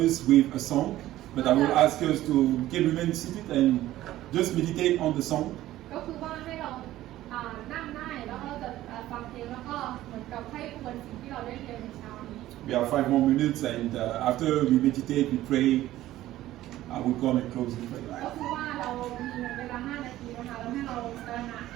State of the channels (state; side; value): quieter; left; 14.8 dB